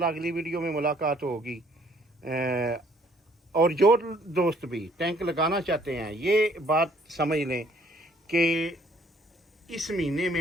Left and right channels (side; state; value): both; normal; correlation 0.62